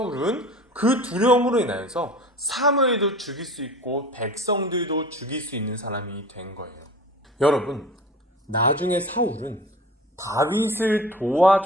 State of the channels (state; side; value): normal; both; correlation 0.39